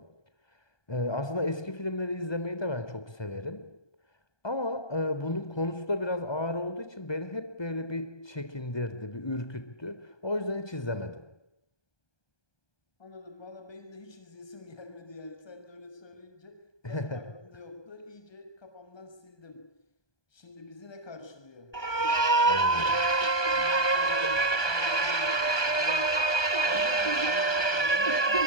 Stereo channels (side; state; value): right; late; 1.2 ms